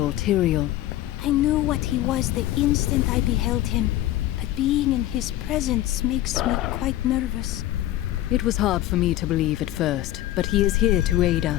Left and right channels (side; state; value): right; quieter; 14.3 dB